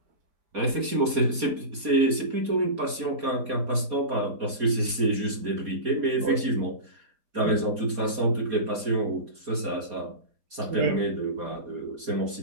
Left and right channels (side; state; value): left; late; 4.2 ms